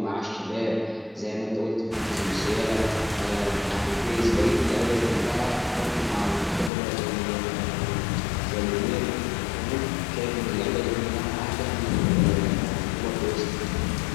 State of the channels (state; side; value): drops out; right; at 6.7 s